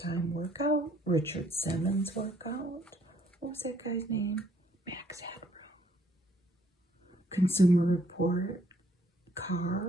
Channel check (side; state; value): both; normal; correlation 0.66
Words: Workout, Richard Simmons Workout. What was that guy's name? Max Hadrow. Consumer Report,